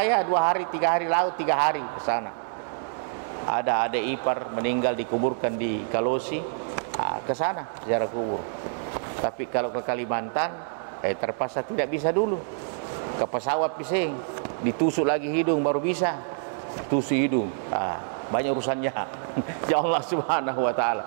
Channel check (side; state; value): left; silent; digital silence